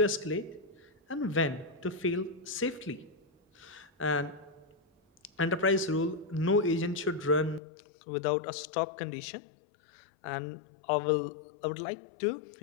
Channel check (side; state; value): right; drops out; at 7.6 s